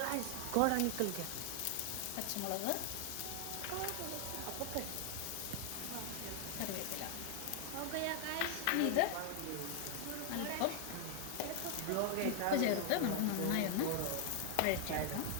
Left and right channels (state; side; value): different; both; correlation 0.00